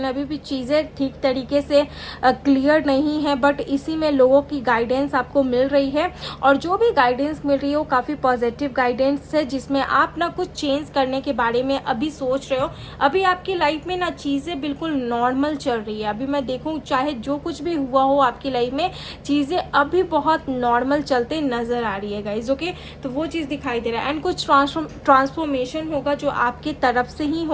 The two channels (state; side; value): identical; both; correlation 1.00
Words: अभी भी चीज़ें ठीक तरीके से क्लियर नहीं है, बट इसी में लोगों की गाइडेंस आपको मिल रही है। और जो भी गाइडेंस मिल रही है वो काफ़ी पॉजिटिव गाइडेंस है, जिसमें आप ना कुछ चेंज करने के बारे में अभी सोच रहे हो। अभी आपकी लाइफ में ना चीज़ें बिल्कुल नॉर्मल चल रही है। अभी मैं देखूँ चाहे जो कुछ भी हुआ हो आपकी लाइफ में, चीज़ें अभी बहुत नॉर्मल चलते नज़र आ रही है गाइज। ओके, तो वो चीज़ दिखाई दे रहा है। एंड कुछ ट्रांसफॉर्मेशन होगा जो आपकी तरफ से ही